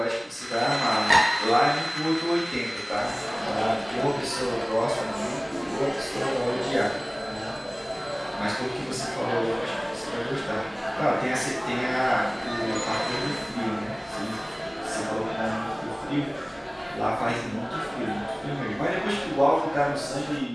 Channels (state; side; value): identical; both; correlation 1.00